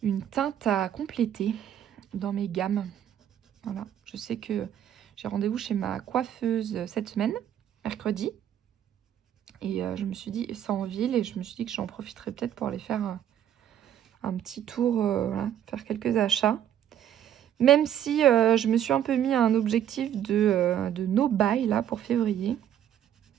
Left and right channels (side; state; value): left; quieter; 10.3 dB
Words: une teinte à compléter dans mes gammes. Voilà, je sais que... j'ai rendez-vous chez ma coiffeuse cette semaine, mercredi. Et je me suis dit, c'est en ville, et je me suis dit que j'en profiterais peut-être pour aller faire un petit tour, voilà, faire quelques achats. Même si je me suis un peu mis un objectif de no buy là pour février.